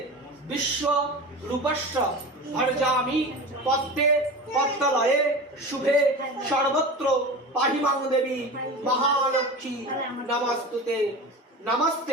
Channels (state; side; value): normal; both; correlation 0.30